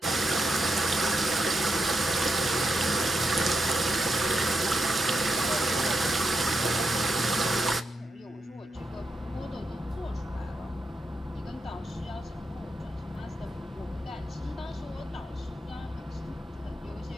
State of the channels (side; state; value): both; normal; correlation 0.84